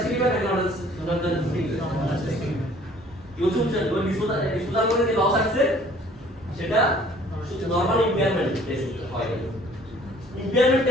ইভেন্ট একটা অ্যাডজাস্টিং ইউজুয়াল ওই ডিসপোজাল করে যে লস আসছে সেটা নরমাল ইম্পেয়ারমেন্ট টেস্ট হয়। ইম্পেয়ারমেন্ট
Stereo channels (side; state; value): both; normal; correlation 0.55